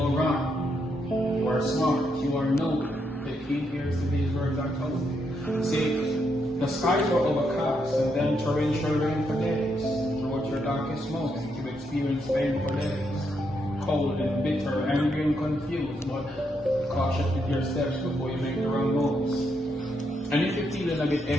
wrong. You are smart. You are noble. The key here is to these words I told you. See, the skies were overcast and then torrential rain for days. Throughout your darkest moment, you experience pain for days. Cold and bitter, angry and confused, but cautious with your steps before you make the wrong moves. And if you're feeling a bit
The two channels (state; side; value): normal; both; correlation 0.79